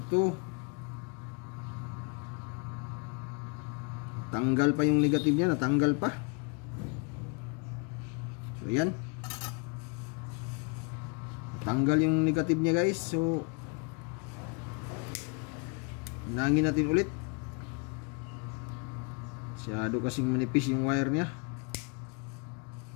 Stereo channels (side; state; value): right; quieter; 35.0 dB